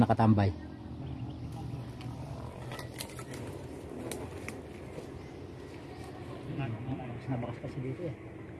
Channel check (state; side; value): identical; both; correlation 1.00